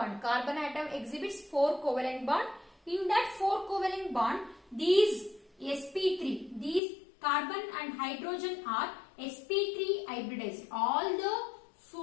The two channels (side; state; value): right; drops out; at 6.8 s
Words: Carbon atom exhibits four covalent bond. In that four covalent bond, these sp3, these carbon and hydrogen are sp3 hybridized. All the